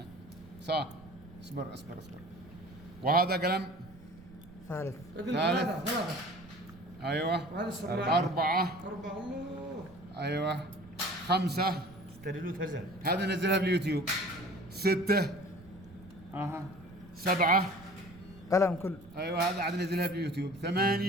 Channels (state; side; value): noise; right; rumble, 20 dB below the sound